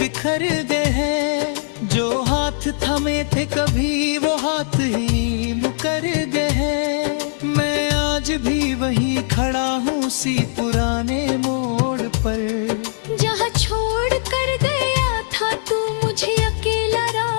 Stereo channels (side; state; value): right; silent; 66 dB below the other